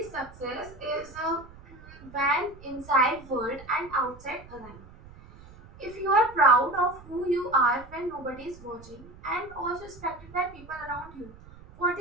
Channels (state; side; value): noise; right; rumble, 20 dB below the sound